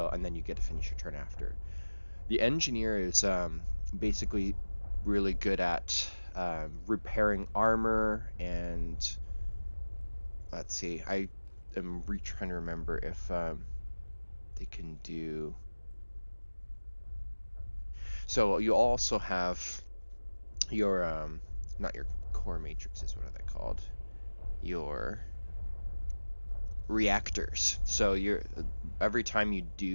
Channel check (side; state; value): both; inverted; correlation -1.00